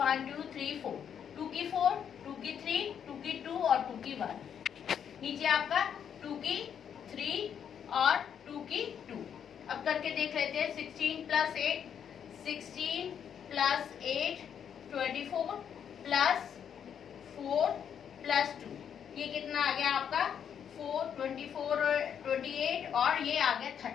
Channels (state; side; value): quieter; right; 8.3 dB